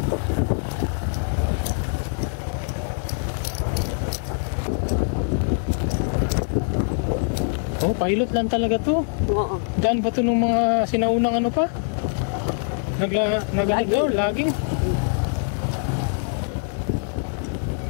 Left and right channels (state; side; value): silent; right; digital silence